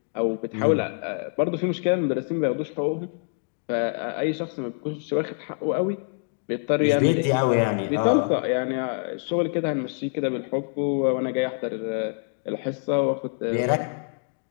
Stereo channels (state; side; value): silent; right; 61 dB below the other